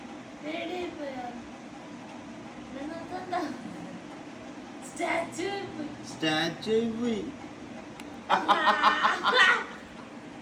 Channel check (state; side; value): identical; both; correlation 1.00